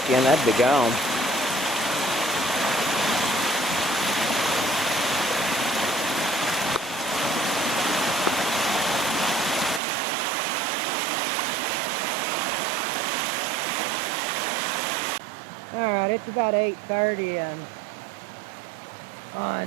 in, that'd be gone. Alright, it's about 8:30 and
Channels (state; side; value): drops out; left; at 9.8 s